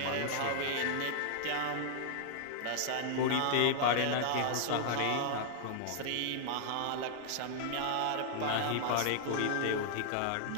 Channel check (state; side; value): different; both; correlation -0.01